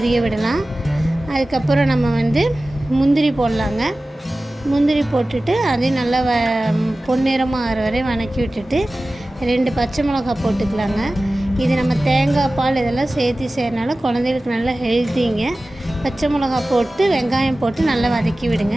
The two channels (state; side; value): normal; both; correlation 0.96